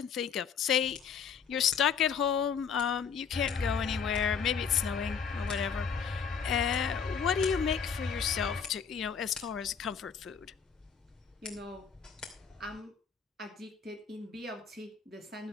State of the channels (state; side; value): quieter; right; 6.7 dB